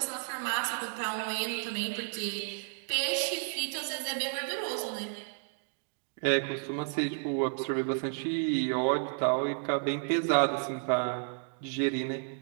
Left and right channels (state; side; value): silent; left; 56 dB below the other